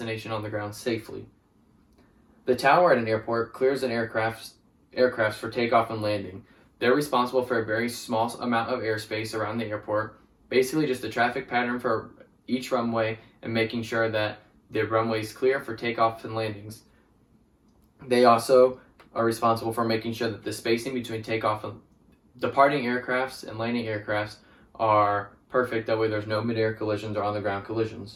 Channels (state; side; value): identical; both; correlation 1.00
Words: on the ground safely. The tower at an airport clears an aircraft for takeoff and landing. They're responsible for a very small amount of airspace around the airport, basically just a traffic pattern for each runway and making sure that the runway is clear for takeoffs and landings. They also are responsible for making sure that the spacing between takeoff and departing aircrafts and landing aircrafts are perfect. That way there's no mid-air collisions or on-the-ground